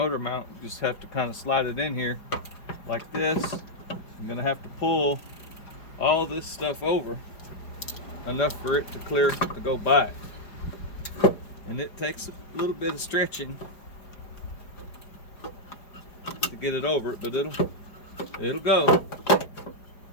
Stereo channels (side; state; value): right; late; 4.9 ms